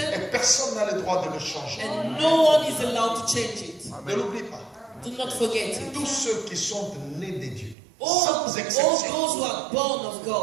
et personne n'a le droit de le changer. and no one is allowed to change it. Ne l'oublie pas. Do not forget it. Tous ceux qui sont nés de Dieu, All sans those exception, who are born of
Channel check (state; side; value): drops out; left; at 7.8 s